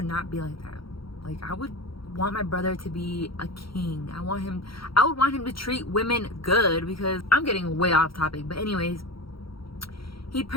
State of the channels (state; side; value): late; right; 0.74 ms